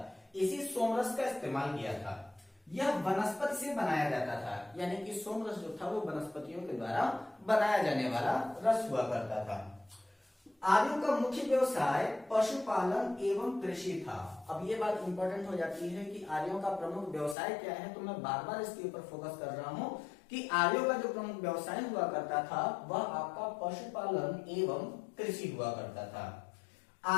इसी सोमरस का इस्तेमाल किया था। यह वनस्पति से बनाया जाता था, यानी कि सोमरस जो था वो वनस्पतियों के द्वारा बनाया जाने वाला रस हुआ करता था। आर्यों का मुख्य व्यवसाय पशुपालन एवं कृषि था। अब ये बात इंपॉर्टेंट हो जाती है कि आर्यों का प्रमुख व्यवसाय क्या है, तो मैं बार बार इसके ऊपर फोकस कर रहा हूं कि आर्यों का जो प्रमुख व्यवसाय हुआ करता था वह आपका पशुपालन एवं कृषि हुआ करता था।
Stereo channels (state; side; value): drops out; right; at 17.4 s